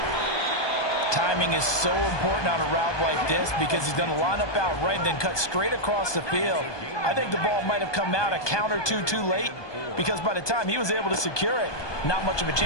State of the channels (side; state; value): right; late; 1.2 ms